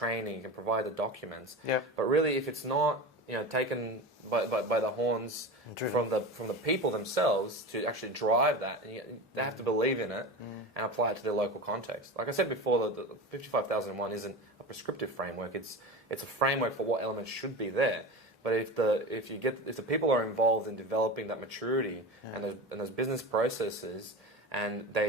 you can provide the documents. But really, if it's not taken by the horns from the people themselves to actually drive that, and they have to believe in it and apply it to their local context. Like I said before, the 55001 isn't a prescriptive framework. It's a framework for what elements should be there. But if the people are involved in developing that maturity and those business processes, and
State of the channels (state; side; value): normal; both; correlation 0.27